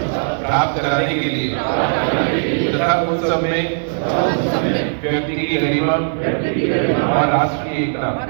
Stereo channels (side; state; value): left; silent; digital silence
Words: प्राप्त कराने के लिए तथा उस सब में व्यक्ति की गरिमा और राष्ट्र की एकता